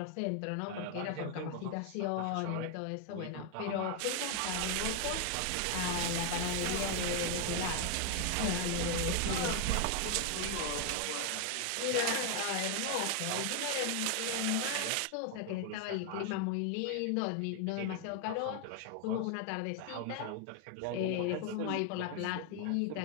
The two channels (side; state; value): both; different; correlation 0.00